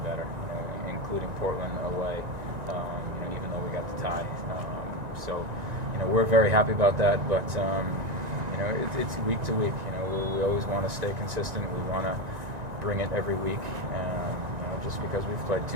better, including Portland away. Even though we got the tie, so we're very happy about that. But it's week to week. We always want to stay consistent. We want to bring it every week. Just because we've played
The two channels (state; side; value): late; left; 1.9 ms